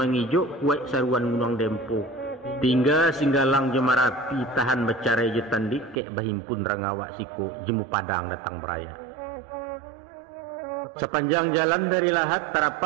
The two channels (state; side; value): drops out; left; at 6.0 s